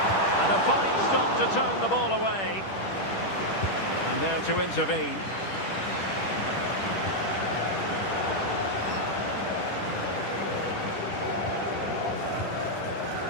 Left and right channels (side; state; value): right; late; 10 ms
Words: And a fine stop to turn the ball away. And there to intervene.